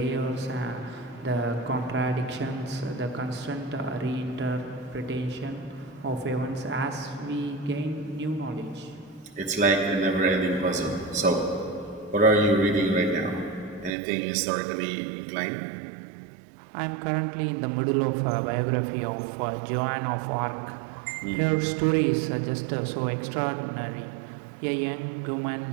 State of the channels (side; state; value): left; drops out; at 14.0 s